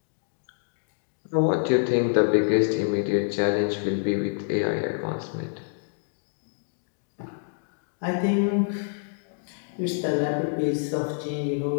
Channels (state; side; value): silent; right; digital silence